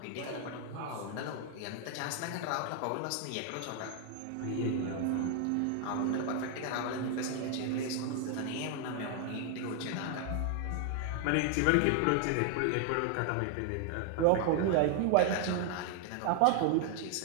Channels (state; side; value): different; both; correlation 0.00